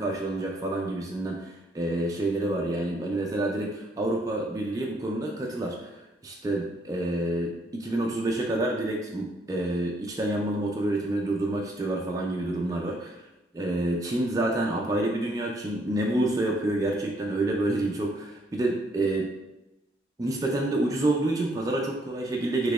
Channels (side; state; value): both; normal; correlation 0.69